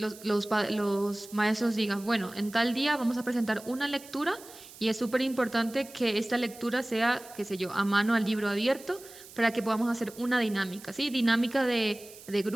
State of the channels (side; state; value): right; noise; hiss, 19 dB below the sound